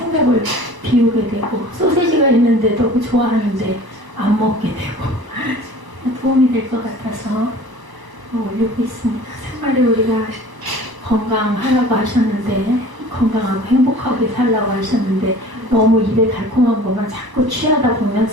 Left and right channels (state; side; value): late; left; 1.0 ms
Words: 비우게 되고, 소세지가 있는데도 좋아하는데 안 먹게 되고 도움이 될 것 같아서 올리고 있습니다. 생활에 우리가 건강하라고 하셨는데, 건강하고 행복하게 살라고 하셨는데, 너무 입에 달콤한 것만 자꾸 취하다 보면